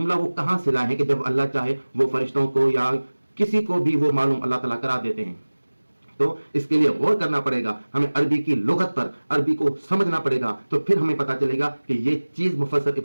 वो कहाँ से लाए हैं कि जब अल्लाह चाहे वो फरिश्तों को या किसी को भी वो मालूम अल्लाह ताला करा देते हैं। तो इसके लिए गौर करना पड़ेगा, हमें अरबी की लुगत पर, अरबी को समझना पड़ेगा, तो फिर हमें पता चलेगा कि ये चीज मुफस्सिर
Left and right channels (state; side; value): inverted; both; correlation -1.00